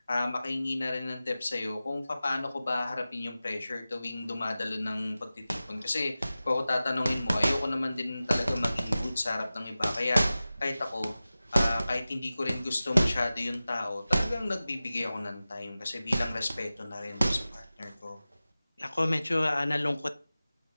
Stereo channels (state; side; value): inverted; both; correlation -0.96